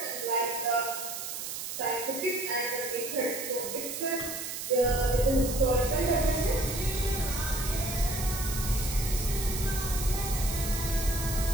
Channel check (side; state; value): right; noise; hiss, 6 dB below the sound